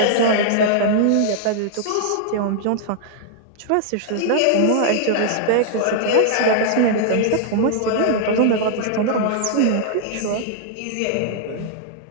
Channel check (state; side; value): different; both; correlation -0.01